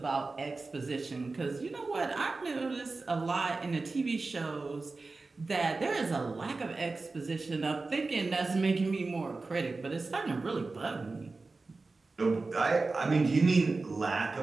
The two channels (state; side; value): quieter; left; 3.7 dB